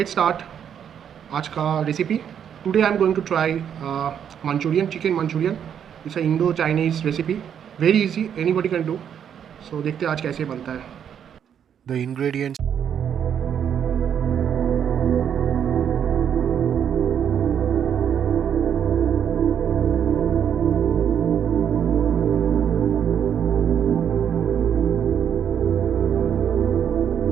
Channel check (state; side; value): quieter; left; 8.6 dB